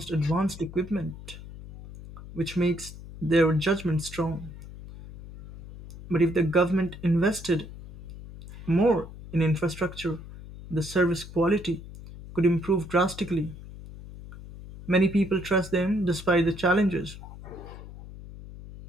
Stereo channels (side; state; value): left; noise; hum, 14 dB below the sound